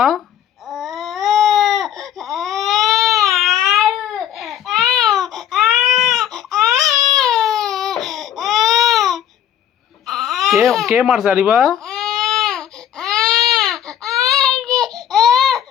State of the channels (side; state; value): right; quieter; 10.3 dB